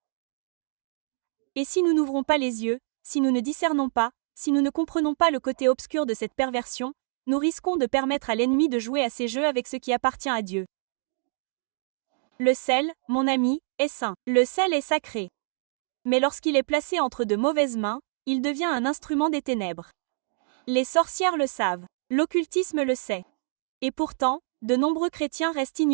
Et si nous n'ouvrons pas les yeux, si nous ne discernons pas, si nous ne comprenons pas le côté obscur de cette perversion, nous risquons de permettre à l'ennemi de jouer à ses jeux avec ce qui appartient à Dieu. Le sel, mon ami, est saint. Le sel est sacré. Mais lorsqu'il est placé entre de mauvaises mains, il devient un instrument des ténèbres. Les sorcières le savent. L'occultisme le sait. Et pourtant, de nombreux chrétiens restent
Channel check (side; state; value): left; silent; digital silence